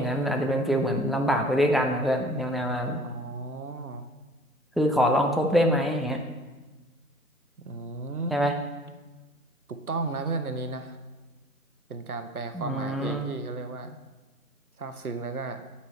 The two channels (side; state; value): both; normal; correlation 0.48